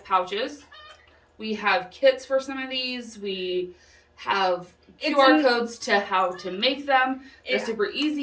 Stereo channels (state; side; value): identical; both; correlation 1.00